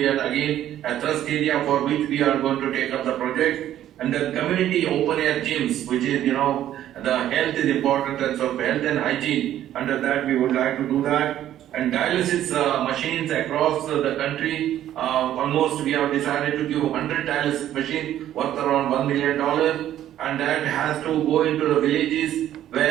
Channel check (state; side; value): quieter; left; 12.0 dB